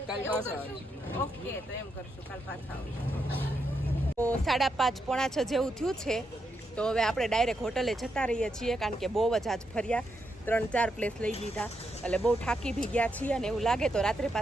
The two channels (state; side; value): normal; both; correlation 0.82